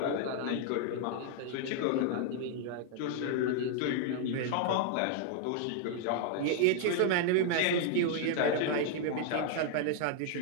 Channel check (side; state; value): both; different; correlation 0.00